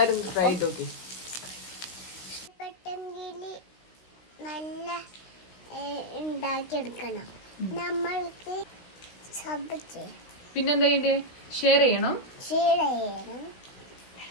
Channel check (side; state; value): right; late; 16 ms